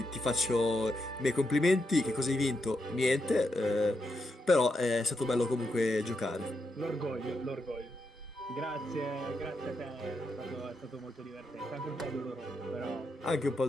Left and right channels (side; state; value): both; normal; correlation 0.83